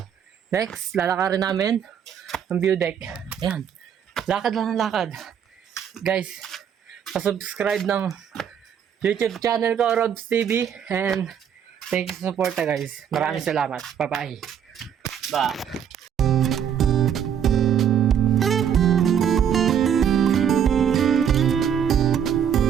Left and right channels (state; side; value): quieter; left; 8.6 dB